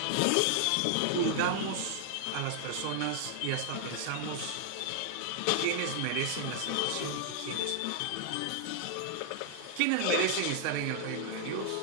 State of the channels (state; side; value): different; both; correlation 0.00